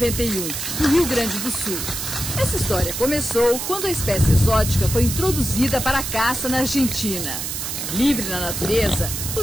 no Rio Grande do Sul. Essa história começou quando a espécie exótica foi introduzida para a caça na Argentina. Livre na natureza,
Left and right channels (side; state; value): right; noise; hiss, 4 dB below the sound